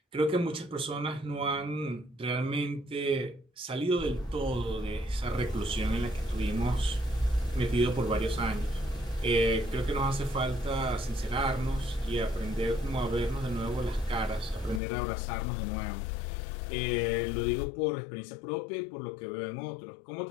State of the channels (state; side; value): drops out; right; at 14.8 s